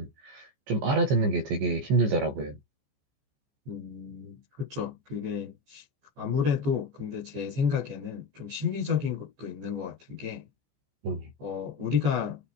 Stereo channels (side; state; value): left; late; 14 ms